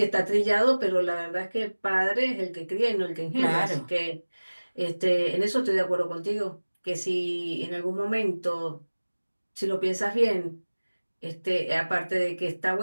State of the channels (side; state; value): both; inverted; correlation -1.00